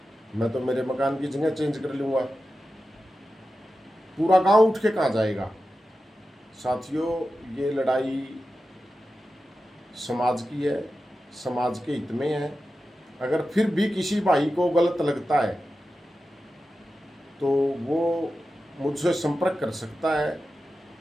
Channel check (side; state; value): both; normal; correlation 0.92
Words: मैं तो मेरे मकान की जगह चेंज कर लूँगा, पूरा गांव उठ के कहाँ जाएगा? साथियों, ये लड़ाई समाज की है, समाज के हित में है। अगर फिर भी किसी भाई को गलत लगता है तो वो मुझसे संपर्क कर सकता है।